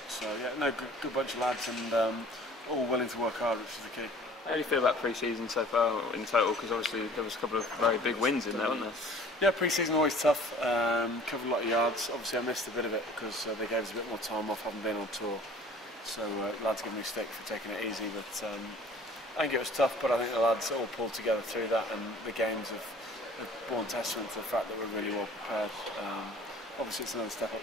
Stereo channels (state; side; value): normal; both; correlation 0.49